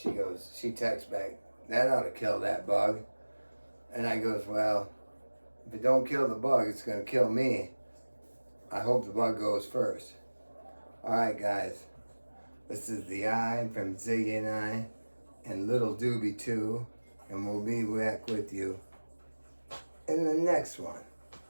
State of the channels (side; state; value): both; inverted; correlation -1.00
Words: texts back, that ought to kill that bug. And I goes, well, if it don't kill the bug, it's gonna kill me. I hope the bug goes first. All right, guys. This is the Eye from Ziggy and I, and Little Doobie too, and we'll be back with you in the next one.